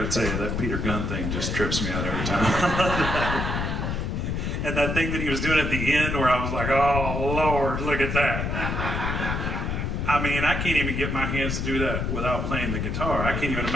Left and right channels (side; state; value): left; noise; rumble, 1 dB below the sound